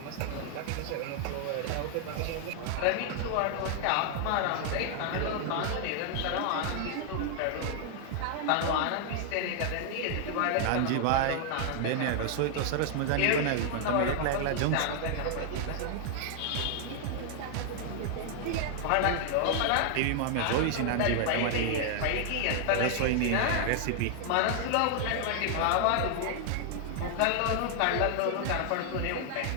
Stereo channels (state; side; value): different; both; correlation 0.00